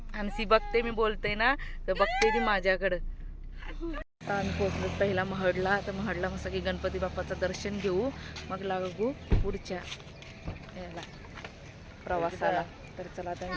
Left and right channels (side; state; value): both; identical; correlation 1.00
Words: हंसी बघते मी बोलते ना, तर बघते ती माझ्याकडं. आता आम्ही पोहोचलो पहिला महडला. तर महडला मस्त की गणपती बाप्पाचं दर्शन घेऊ, मग लागू पुढच्या याला प्रवासाला. तर चला आता